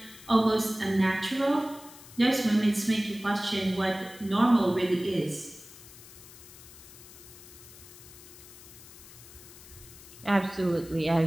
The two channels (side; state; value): left; noise; hiss, 18 dB below the sound